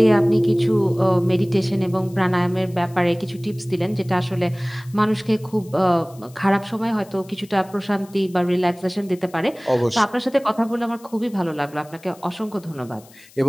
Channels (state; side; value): noise; left; hiss, 25 dB below the sound